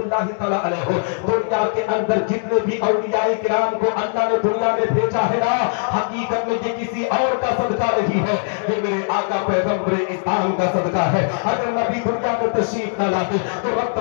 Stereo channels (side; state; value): right; silent; digital silence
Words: तआला अलैह, दुनिया के अंदर जितने भी औलियाए किराम को अल्लाह ने दुनिया में भेजा है ना, हकीकत में ये किसी और का सदका नहीं है, ये मेरे आका पैगंबर इस्लाम का सदका है। अगर नबी दुनिया में तशरीफ न लाते तो रब